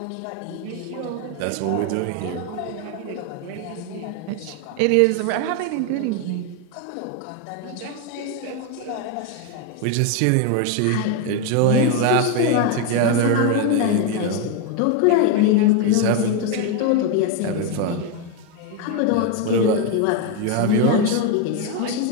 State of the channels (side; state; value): both; different; correlation 0.01